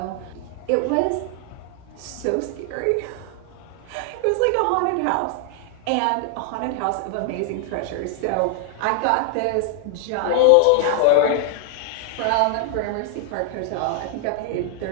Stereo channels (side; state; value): both; different; correlation 0.00